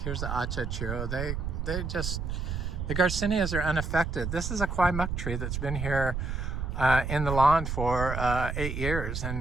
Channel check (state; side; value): noise; right; rumble, 3 dB below the sound